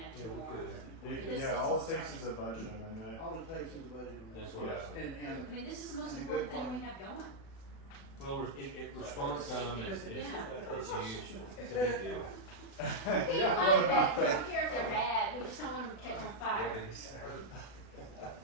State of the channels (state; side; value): late; right; 36 ms